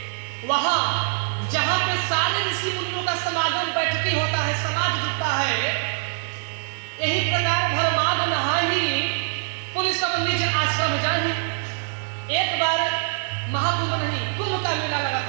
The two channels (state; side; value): silent; left; digital silence